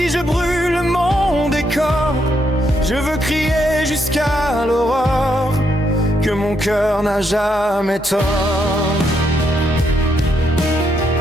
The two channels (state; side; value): normal; both; correlation 0.77